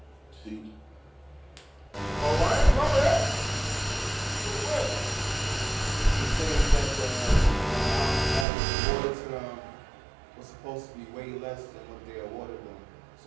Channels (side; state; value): left; drops out; at 8.5 s